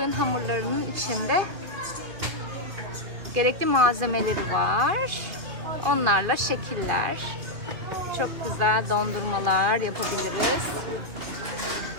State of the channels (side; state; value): left; late; 2.8 ms